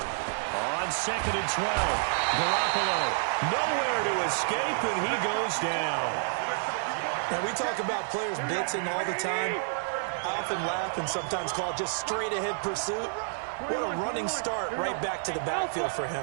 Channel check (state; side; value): silent; left; 58 dB below the other